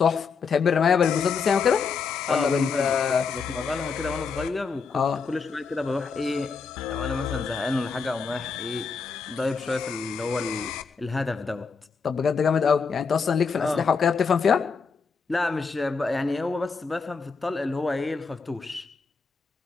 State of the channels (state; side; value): quieter; right; 5.2 dB